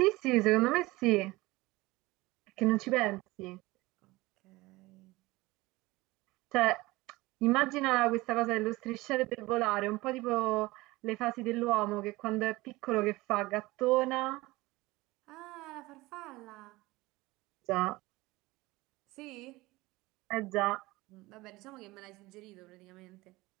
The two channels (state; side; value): quieter; left; 20.5 dB